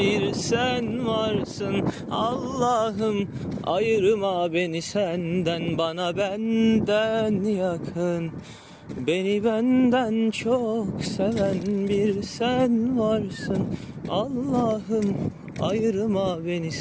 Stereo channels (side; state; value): both; identical; correlation 1.00